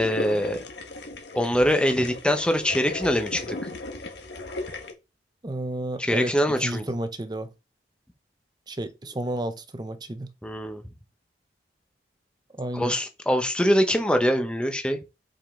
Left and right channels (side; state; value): both; normal; correlation 0.80